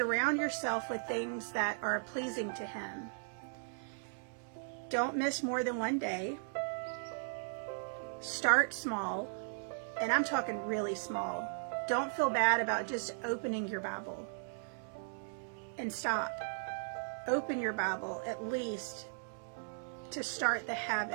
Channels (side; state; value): left; silent; digital silence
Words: yourself with things that are pleasing to Him. Don't miss more than one day. Start small, and I'm talking really small. Don't feel bad about just opening your Bible. And stop. Open your Bible at least to start the